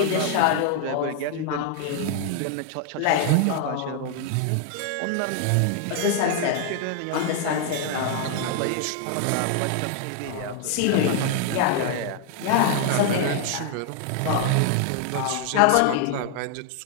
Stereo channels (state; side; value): different; both; correlation 0.00